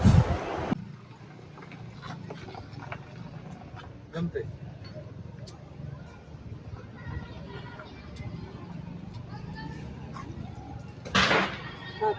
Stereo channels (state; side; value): identical; both; correlation 1.00